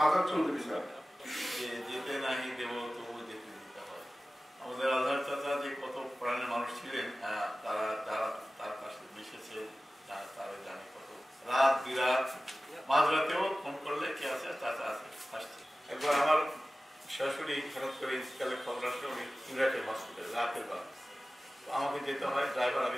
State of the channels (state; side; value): normal; both; correlation 0.96